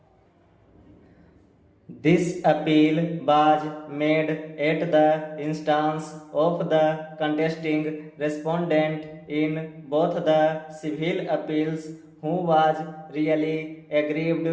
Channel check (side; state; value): both; identical; correlation 1.00